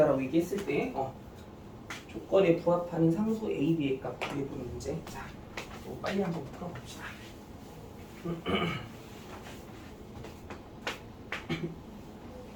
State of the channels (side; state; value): both; identical; correlation 1.00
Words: 얘기했을 때 조건에 부합하는 상수 A, B의 값 구해보는 문제. 자, 빨리 한번 풀어봅시다.